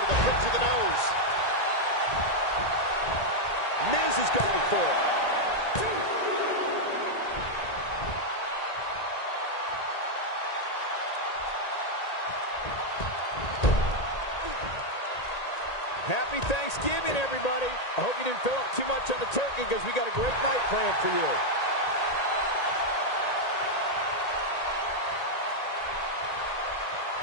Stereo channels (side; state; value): right; late; 1.8 ms